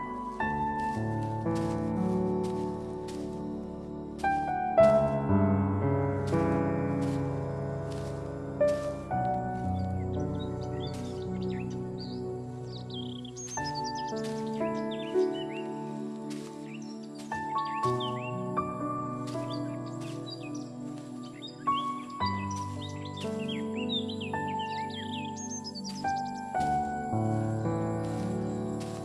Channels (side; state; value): both; identical; correlation 1.00